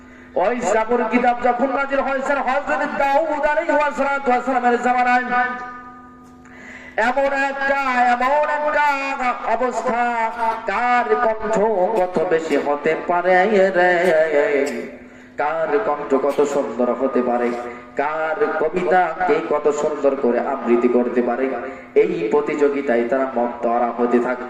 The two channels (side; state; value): both; identical; correlation 1.00